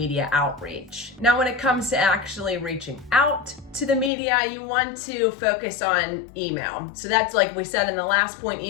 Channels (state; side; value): drops out; right; at 4.1 s